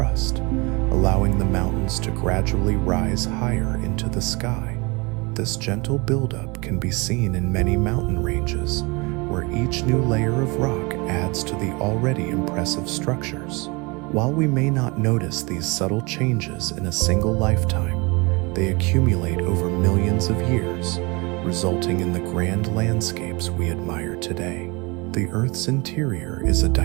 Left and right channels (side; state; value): left; quieter; 27.2 dB